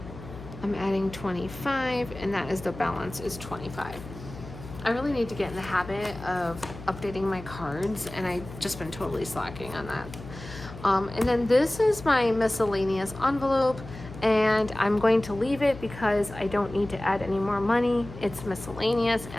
25, and that is the balance is 25. I really need to get in the habit of updating my cards, and I've just been totally slacking on that. And then this is my miscellaneous envelope, and I'm going to leave it because I don't need to add any more money. It's miscellaneous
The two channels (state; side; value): noise; left; hum, 14 dB below the sound